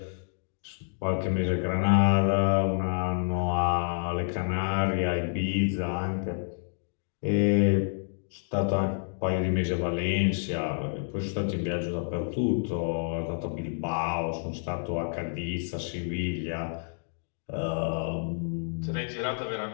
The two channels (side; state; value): right; silent; digital silence